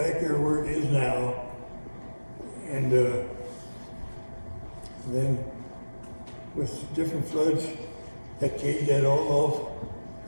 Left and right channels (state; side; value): inverted; both; correlation -1.00